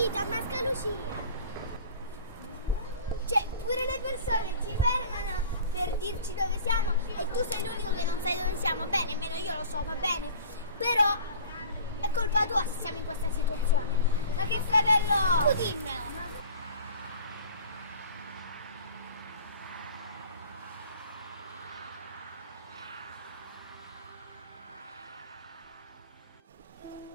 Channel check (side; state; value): both; inverted; correlation -0.44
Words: a Mascalucia. Cioè, pure le persone ci fermano per dirci dove siamo e tu sei l'unico che non sai dove siamo. Bene, nemmeno io lo so, va bene. Però è colpa tua se siamo in questa situazione. Ma che fratello! Tu dimmelo.